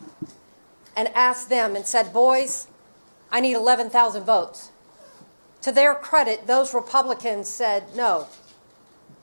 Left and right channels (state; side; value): inverted; both; correlation -1.00